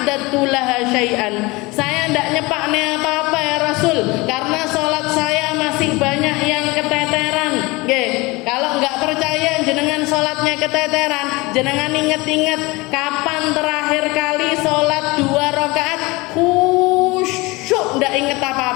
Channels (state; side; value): quieter; right; 23.5 dB